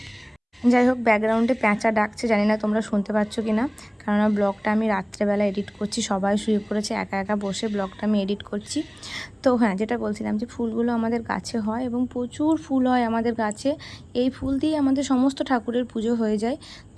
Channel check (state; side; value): identical; both; correlation 1.00